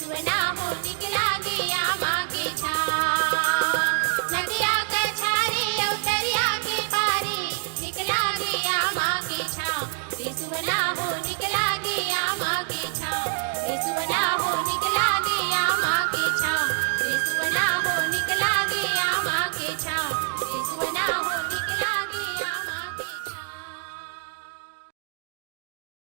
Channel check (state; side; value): silent; left; digital silence